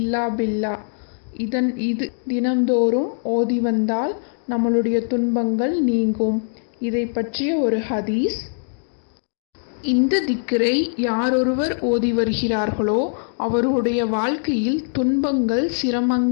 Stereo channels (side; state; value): right; silent; digital silence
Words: பில்லா. இது தினந்தோறும் ஓதி வந்தால் நம்மளுடைய துன்பங்கள் நீங்கும். இதை பற்றிய ஒரு ஹதீஸ். இந்த திக்ரை யாரொருவர் ஓதி வருகிறார்களோ அவருடைய வாழ்க்கையில் துன்பங்கள்